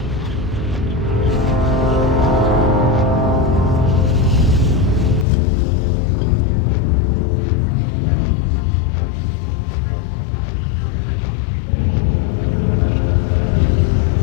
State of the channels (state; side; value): drops out; right; at 5.2 s